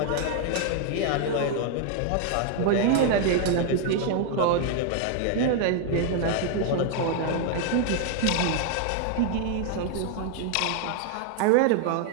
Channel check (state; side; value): different; both; correlation 0.00